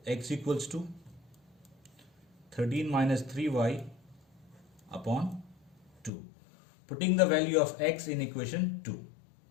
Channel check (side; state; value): right; drops out; at 6.1 s